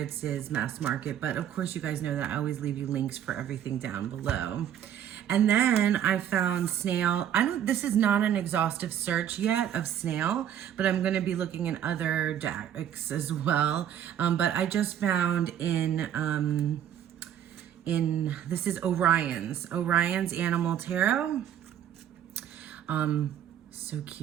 is mass market. But of course you guys know that I always leave you links for everything down below. And then I found Snail. This is not an exhaustive search yet of Snail, but I'm going to be looking in other decks as well. But I just found this is Orion's Animal Tarot. So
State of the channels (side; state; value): left; quieter; 10.1 dB